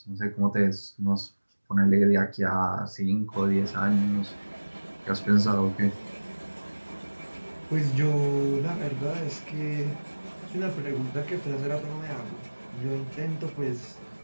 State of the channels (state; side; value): inverted; both; correlation -1.00